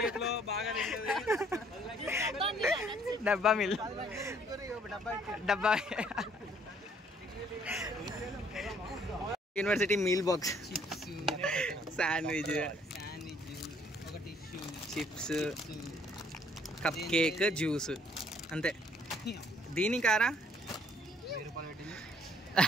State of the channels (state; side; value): normal; both; correlation 0.62